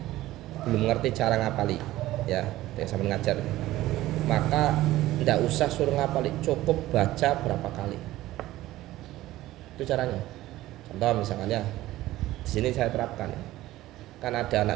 belum ngerti cara ngapali ya, sama ngajar. Maka tidak usah suruh ngapali, cukup baca berapa kali. Itu caranya. Contoh misalkan ya, di sini saya terapkan ya. Kan ada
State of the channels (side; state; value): left; quieter; 16.0 dB